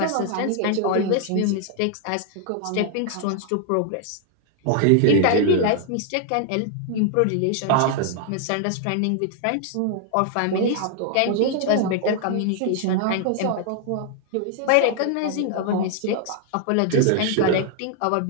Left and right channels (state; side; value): different; both; correlation 0.00